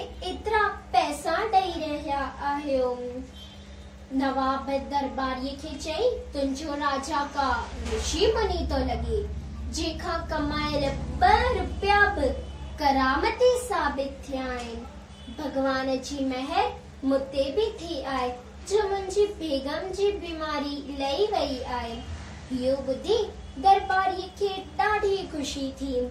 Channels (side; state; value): both; identical; correlation 1.00